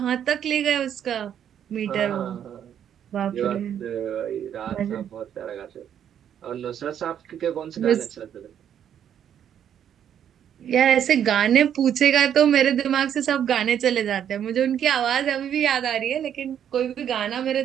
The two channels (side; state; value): left; quieter; 9.4 dB